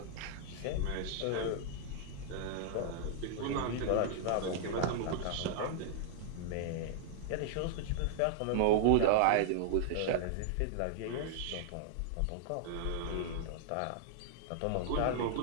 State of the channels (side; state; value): both; different; correlation -0.01